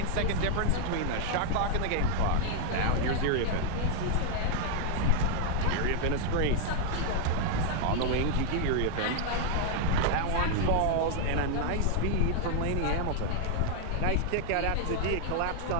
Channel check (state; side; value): different; both; correlation 0.00